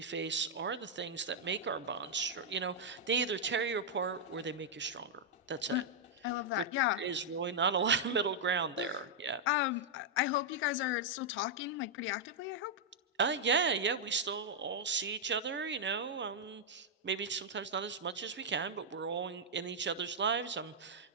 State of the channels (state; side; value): normal; both; correlation -0.05